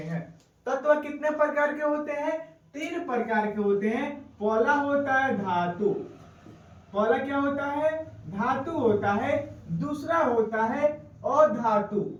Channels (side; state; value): both; identical; correlation 1.00